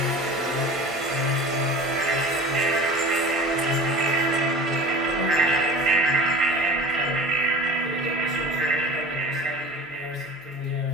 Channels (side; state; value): both; normal; correlation 0.39